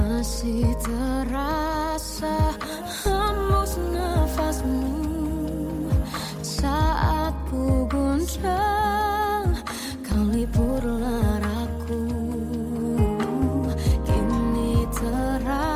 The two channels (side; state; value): both; identical; correlation 1.00